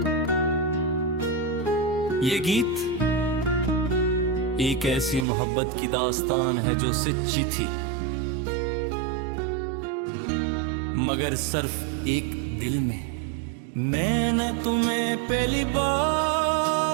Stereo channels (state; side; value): drops out; left; at 5.2 s